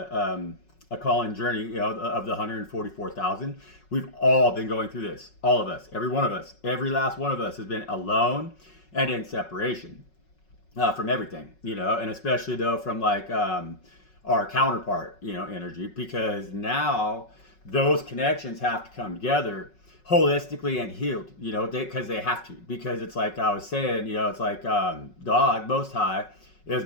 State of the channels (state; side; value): late; right; 5.4 ms